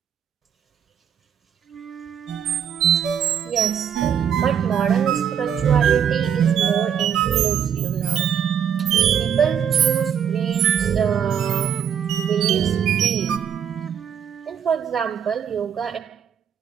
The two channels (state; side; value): quieter; left; 8.4 dB